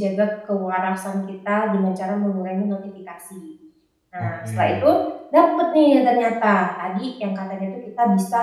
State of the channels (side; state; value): both; identical; correlation 1.00